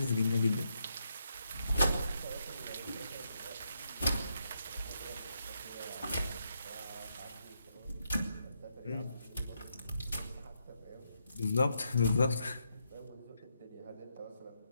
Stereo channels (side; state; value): both; inverted; correlation -0.81